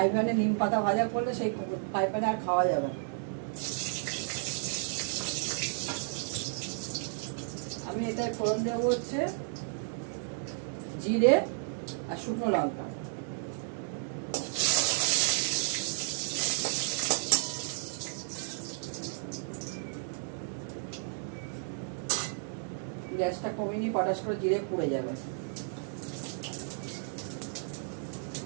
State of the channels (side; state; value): left; silent; digital silence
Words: প্যানে নিম পাতা ভাজা করলে সেই ফ্রাই প্যানে আর খাওয়া যাবে না। আমি এটায় ফোড়ন দেবো হচ্ছে জিরে আর শুকনো লঙ্কা। গ্যাসটা কমিয়ে নিয়ে পটাশ করে জিরে পুড়ে যাবে।